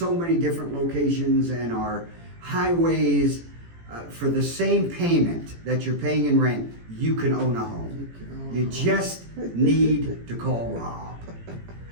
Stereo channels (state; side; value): late; left; 18 ms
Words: many different locations and our highways, for the same payment that you're paying in rent, you can own a home. You just need to call Rob.